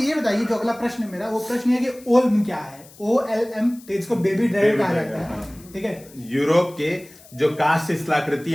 ये बताइए, जो अगला प्रश्न है मेरा, वो प्रश्न ये है कि ओल्म क्या है? OLM, इसको बेबी ड्राइवर कहा जाता है, ठीक है। यूरोप के जो काष्ठ शिलाकृति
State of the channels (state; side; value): noise; left; hiss, 23 dB below the sound